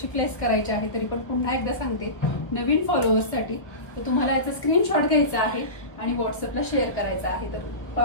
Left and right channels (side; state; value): right; late; 1.1 ms